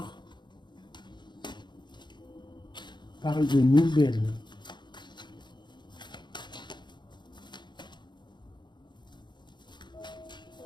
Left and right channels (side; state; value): right; late; 0.22 ms